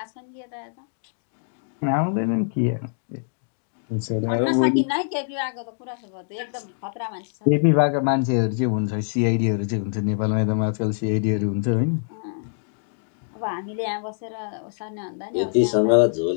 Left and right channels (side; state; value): right; silent; digital silence